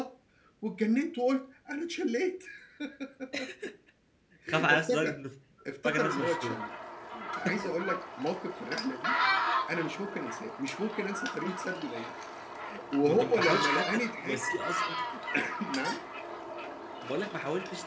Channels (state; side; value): identical; both; correlation 1.00